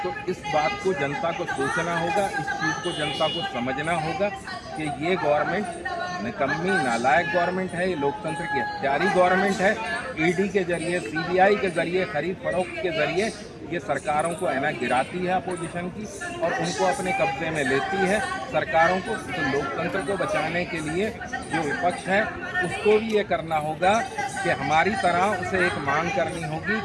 इस बात को जनता को सोचना होगा, इस चीज़ को जनता को समझना होगा कि ये गवर्नमेंट निकम्मी नालायक गवर्नमेंट है, ये लोकतंत्र की हत्यारी गवर्नमेंट है। ED के जरिए, CBI के जरिए, खरीद फरोख्त के जरिए ये सरकारों को है ना गिराती है अपोजिशन की, और उनको अपने कब्जे में लेती है सरकारों को। तो लोकतंत्र को बचाने के लिए जो विपक्ष है उसको भी ये करना होगा कि हमारी तरह उसे एक मांग करनी होगी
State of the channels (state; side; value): identical; both; correlation 1.00